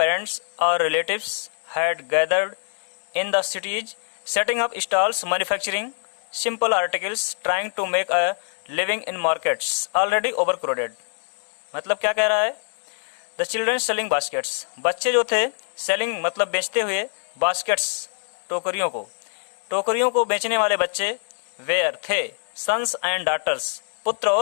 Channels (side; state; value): right; silent; digital silence